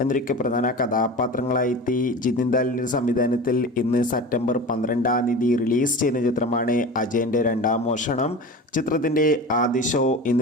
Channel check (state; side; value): normal; both; correlation 0.32